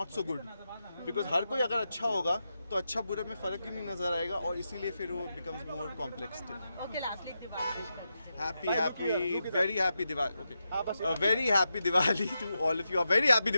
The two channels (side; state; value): both; inverted; correlation -0.87